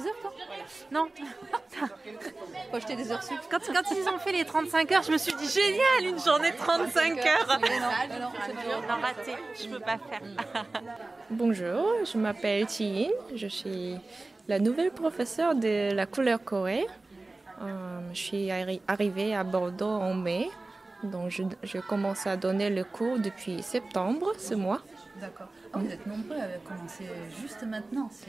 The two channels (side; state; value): left; quieter; 3.1 dB